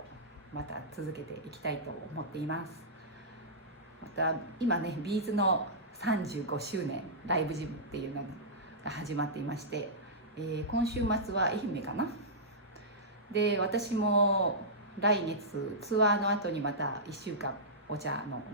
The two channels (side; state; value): both; normal; correlation -0.15